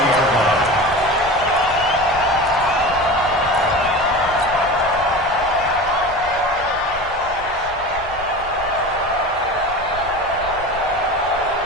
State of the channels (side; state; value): left; noise; rumble, 16 dB below the sound